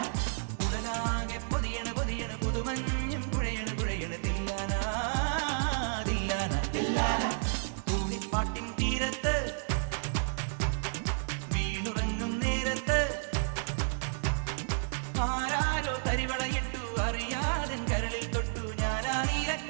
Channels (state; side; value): silent; left; digital silence